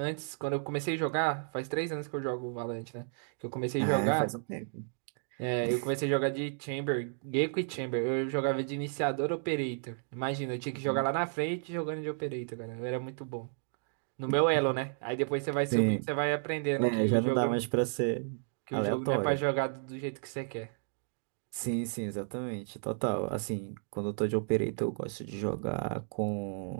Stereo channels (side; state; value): left; silent; digital silence